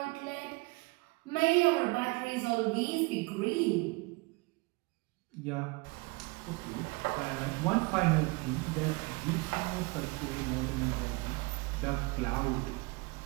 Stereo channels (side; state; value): left; quieter; 26.3 dB